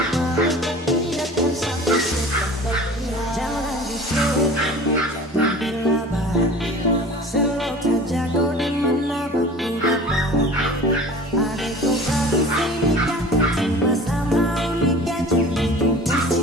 tidak, dan sampai setan berpihak. Jangan dicek, jangan dilabah, selalu saja kau di mana aku dapat.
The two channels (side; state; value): both; normal; correlation 0.41